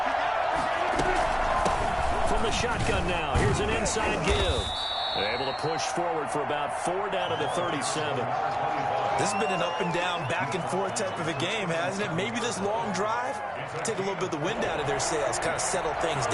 From the shotgun now, here's an inside give. They're able to push forward for about 4 down to the 37. This has been an up and down, back and forth type of a game, hasn't it? Maybe this long drive, take a little bit of the wind out of their sails, kind of settle things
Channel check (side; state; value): both; identical; correlation 1.00